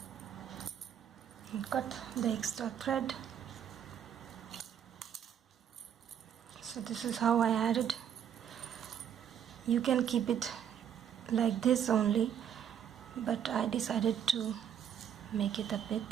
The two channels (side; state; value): left; quieter; 9.0 dB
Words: And cut the extra thread. So this is how I added. You can keep it like this only, but I decided to make it a